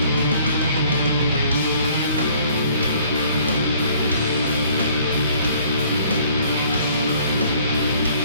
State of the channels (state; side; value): inverted; both; correlation -0.57